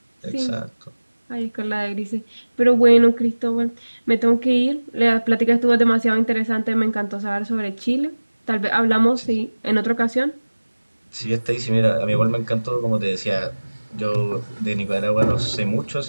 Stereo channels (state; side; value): inverted; both; correlation -1.00